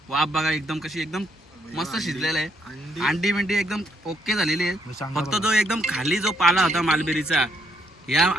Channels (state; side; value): normal; both; correlation 0.73